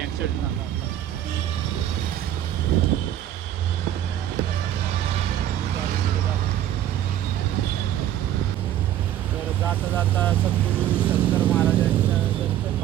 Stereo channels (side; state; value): left; quieter; 11.8 dB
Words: ॲक्सिडेंट झाला होता. तर जाता जाता सद्गुरू शंकर महाराजांच्या दर्शन